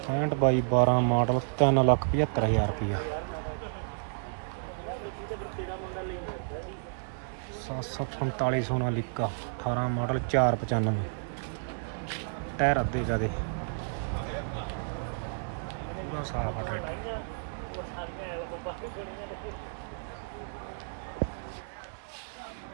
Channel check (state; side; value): silent; left; 57 dB below the other